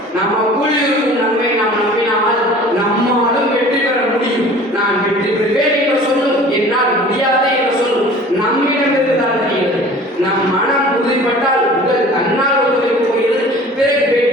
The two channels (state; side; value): normal; both; correlation 0.45